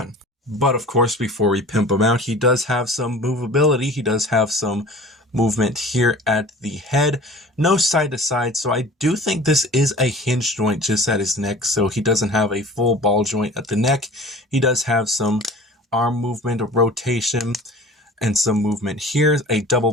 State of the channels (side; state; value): both; normal; correlation 0.43